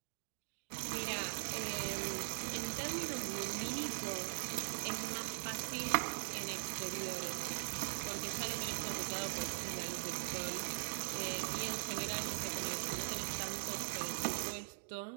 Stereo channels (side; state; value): left; silent; digital silence